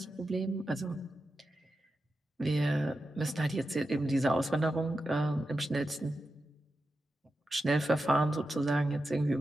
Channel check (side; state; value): both; normal; correlation 0.90